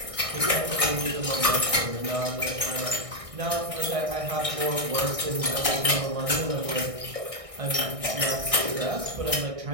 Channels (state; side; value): late; left; 1.6 ms